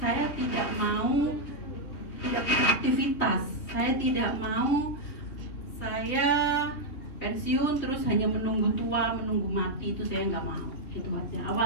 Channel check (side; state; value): right; late; 3.7 ms